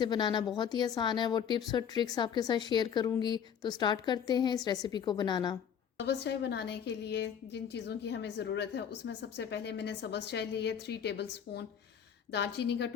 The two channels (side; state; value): right; quieter; 8.1 dB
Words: बनाना बहुत ही आसान है। वो टिप्स और ट्रिक्स आपके साथ शेयर करूँगी। तो स्टार्ट करते हैं इस रेसिपी को बनाना। सब्ज़ चाय बनाने के लिए जिन चीज़ों की हमें ज़रूरत है, उसमें सबसे पहले मैंने सब्ज़ चाय ली है 3 टेबल स्पून, दालचीनी का